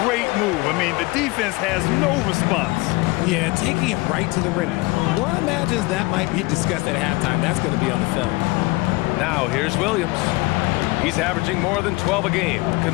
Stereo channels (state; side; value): quieter; right; 23.6 dB